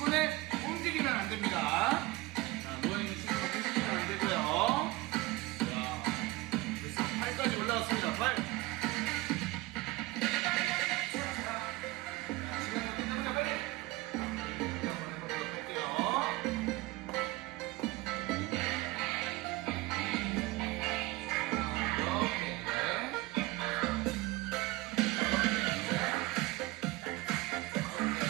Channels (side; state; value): left; quieter; 20.3 dB